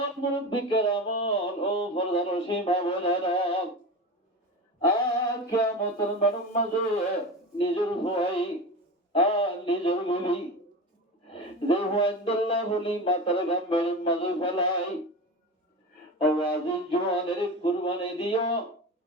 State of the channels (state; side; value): normal; both; correlation 0.27